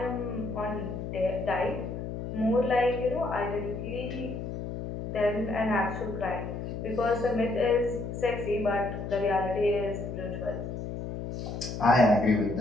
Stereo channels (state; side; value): noise; left; hum, 6 dB below the sound